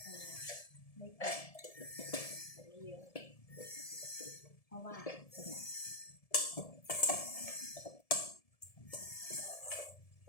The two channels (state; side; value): late; right; 1.7 ms